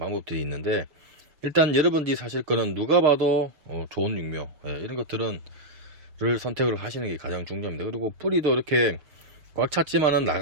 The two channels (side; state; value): left; late; 6.6 ms